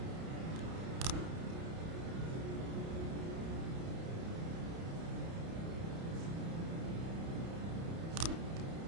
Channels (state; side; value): late; left; 31 ms